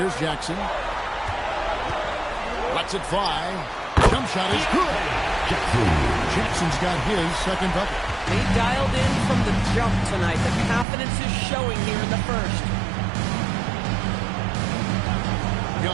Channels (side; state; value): left; drops out; at 10.9 s